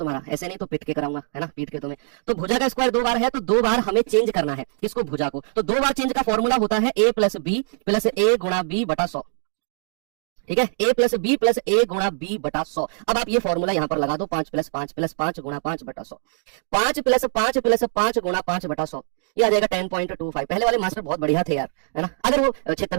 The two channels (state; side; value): silent; left; digital silence